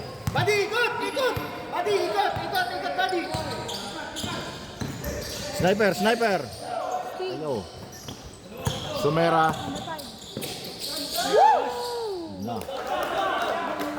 Buddy, ikot! Buddy, ikot, buddy! Sniper. Ayo. Sumera. Na.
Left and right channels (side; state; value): both; identical; correlation 1.00